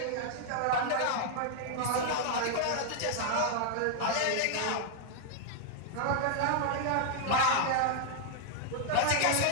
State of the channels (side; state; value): both; different; correlation 0.00